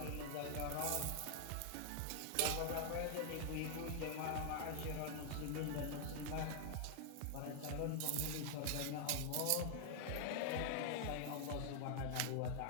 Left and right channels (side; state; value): both; different; correlation 0.00